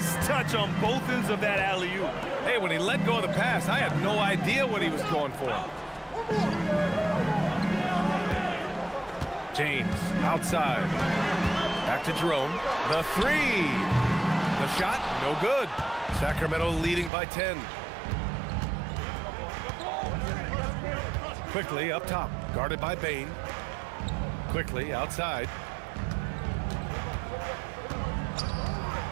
touch on both ends of that alley-oop. Hey, when he let go of the pass, I had no idea what he was going for. James, outside. Back to Jerome. The 3. The shot, no good. Sacramento leading by 10. Quickly up top, guarded by Bain. Quickly outside.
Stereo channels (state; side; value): drops out; left; at 17.1 s